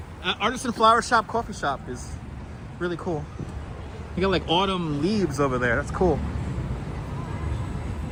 Artisan Flower Shop coffee shop is really cool. You got like autumn leaves over there. That's cool.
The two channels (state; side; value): identical; both; correlation 1.00